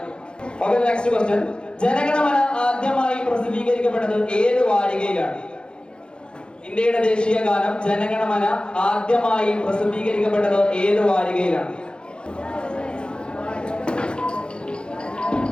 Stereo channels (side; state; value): right; late; 0.052 ms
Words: Okay, next question. ജനഗണമന ആദ്യമായി പ്രസിദ്ധീകരിക്കപ്പെട്ടത് ഏത് വാരികയിലാണ്? ഇന്ത്യയുടെ ദേശീയ ഗാനം ജനഗണമന ആദ്യമായി പ്രസിദ്ധീകരിക്കപ്പെട്ടത് ഏത് വാരികയിലാണ്?